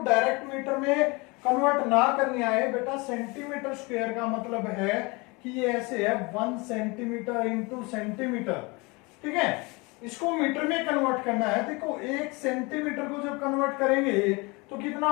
डायरेक्ट मीटर में कन्वर्ट ना करनी आए बेटा, सेंटीमीटर स्क्वायर का मतलब है कि ये ऐसे है 1 सेंटीमीटर इंटू सेंटीमीटर, ठीक है। इसको मीटर में कन्वर्ट करना है। देखो 1 सेंटीमीटर को जब कन्वर्ट करेंगे तो कितना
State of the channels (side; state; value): right; quieter; 26.7 dB